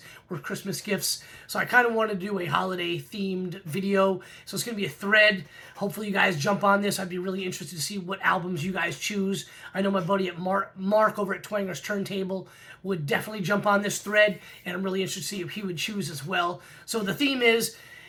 were Christmas gifts. So I kind of wanted to do a holiday-themed video. So it's going to be a thread. Hopefully you guys jump on this. I'd be really interested to see what albums you guys choose. I know my buddy at Mark over at Twanger's Turntable would definitely jump on this thread, and I'm really interested to see if he would choose as well. So the theme is,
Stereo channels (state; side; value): identical; both; correlation 1.00